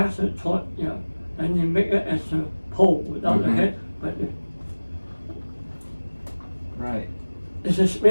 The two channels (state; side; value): inverted; both; correlation -1.00